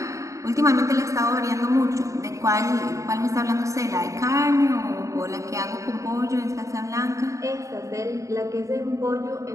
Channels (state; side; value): late; left; 0.15 ms